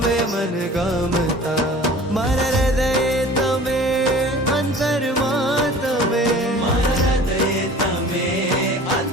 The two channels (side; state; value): both; normal; correlation 0.44